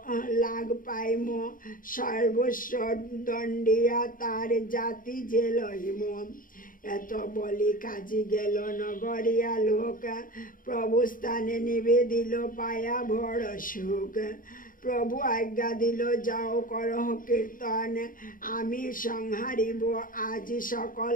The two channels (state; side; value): late; right; 0.40 ms